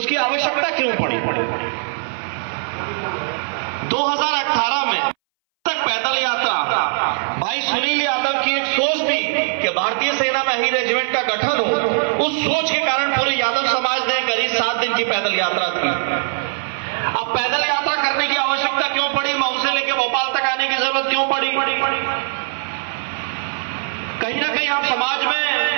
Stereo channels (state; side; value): silent; left; 63 dB below the other